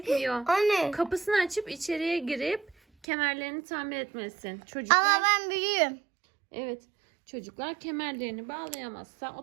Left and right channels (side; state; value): left; drops out; at 3.1 s